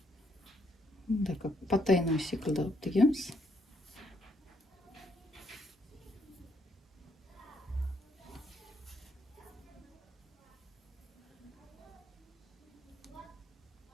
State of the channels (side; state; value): both; normal; correlation 0.73